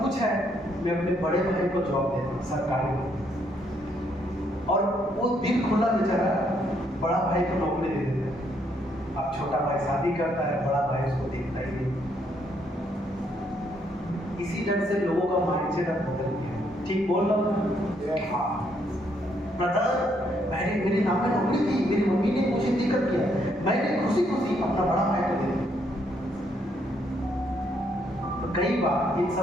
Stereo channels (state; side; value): normal; both; correlation 0.72